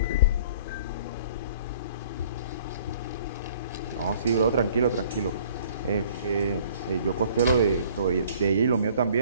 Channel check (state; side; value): inverted; both; correlation -0.54